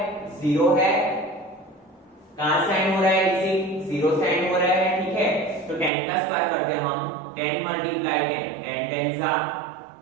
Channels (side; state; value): left; drops out; at 5.9 s